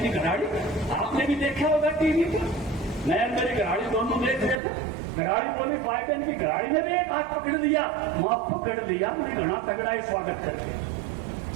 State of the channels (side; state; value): left; drops out; at 4.6 s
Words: की घराड़ी, आपने भी देखा होगा टीवी पर, मैं मेरी घराड़ी दोनों देख रहे थे। घराड़ी बोली बाइडेन की घराड़ी ने भी एक हाथ पकड़ लिया, वहां पकड़ लिया, मैंने घना तगड़ा ही स्वागत करके।